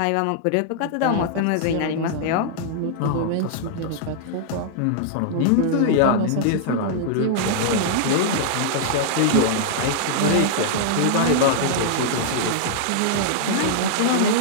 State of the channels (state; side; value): different; both; correlation -0.01